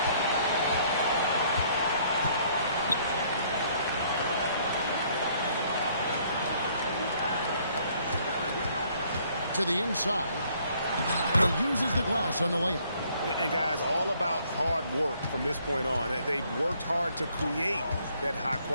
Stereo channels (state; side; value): inverted; both; correlation -0.64